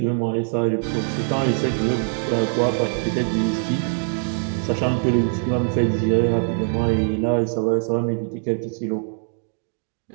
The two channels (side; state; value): left; silent; 64 dB below the other